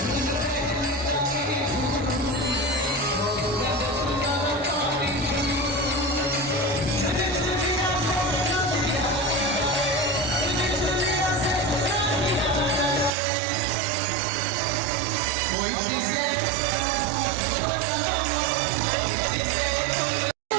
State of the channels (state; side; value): drops out; left; at 13.1 s